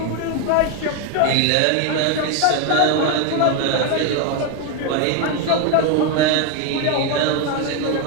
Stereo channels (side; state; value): both; different; correlation 0.02